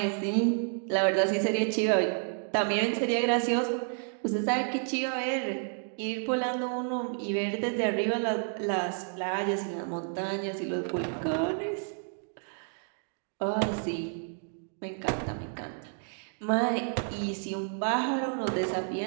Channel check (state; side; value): silent; left; 58 dB below the other